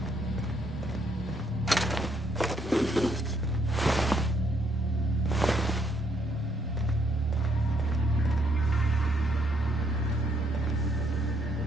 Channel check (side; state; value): both; normal; correlation 0.71